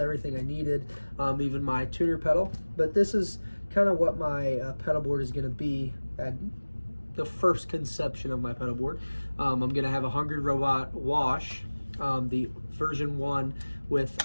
I needed, even my tuner pedal. But this is kind of what my pedal board is going to be at the first conception of my pedal board. I'm going to have a Hungry Robot wash, the version 1 with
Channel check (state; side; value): inverted; both; correlation -1.00